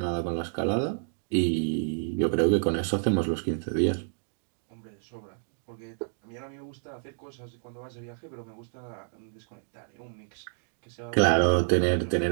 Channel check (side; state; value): left; silent; digital silence